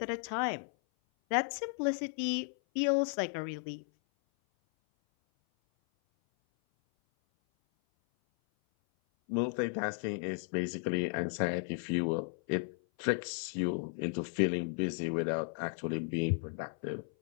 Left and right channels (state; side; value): silent; right; 55 dB below the other